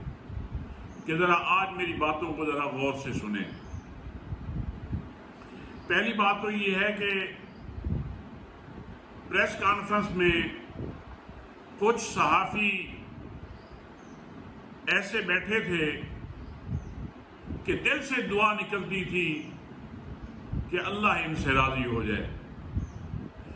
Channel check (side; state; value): both; identical; correlation 1.00